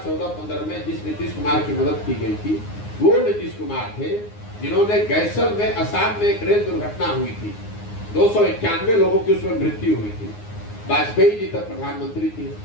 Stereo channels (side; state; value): right; late; 9.6 ms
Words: में जिस नीतीश कुमार की मदद की गई थी वो नीतीश कुमार थे जिन्होंने गैसल में असम में एक रेल दुर्घटना हुई थी, 291 लोगों की उसमें मृत्यु हुई थी। वाजपेयी जी तक प्रधानमंत्री थे।